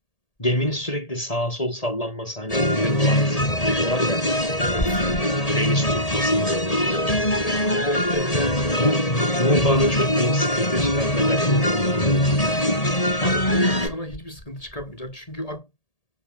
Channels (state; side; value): late; right; 1.8 ms